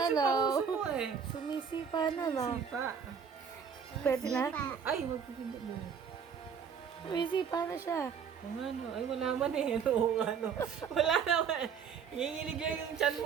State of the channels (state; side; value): quieter; left; 7.0 dB